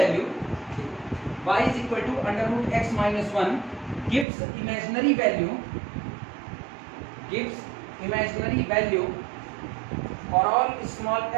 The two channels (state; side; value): drops out; left; at 4.2 s